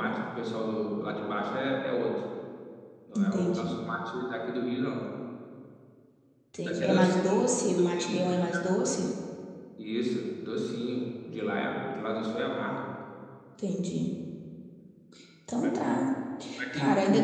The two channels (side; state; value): both; identical; correlation 1.00